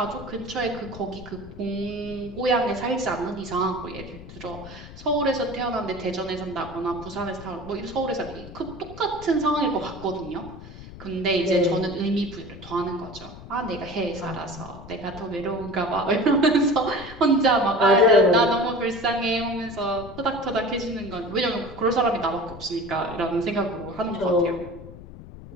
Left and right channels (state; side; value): noise; left; rumble, 15 dB below the sound